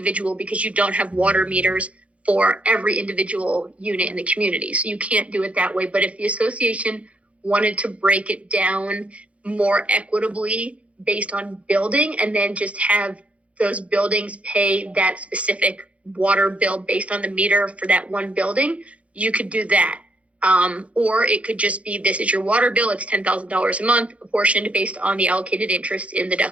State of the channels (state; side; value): late; left; 0.064 ms